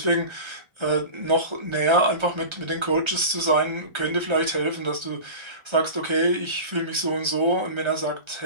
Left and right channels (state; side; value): late; left; 1.3 ms